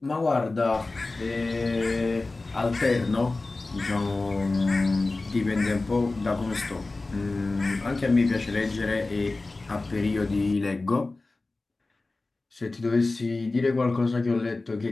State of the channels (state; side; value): quieter; right; 3.3 dB